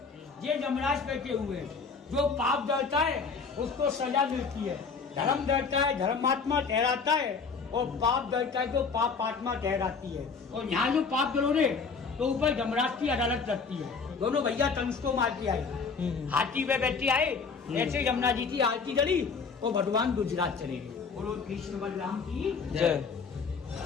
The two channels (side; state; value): right; quieter; 5.2 dB